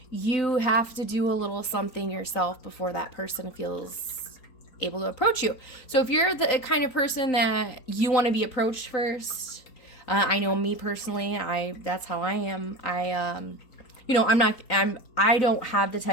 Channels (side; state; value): right; late; 3.9 ms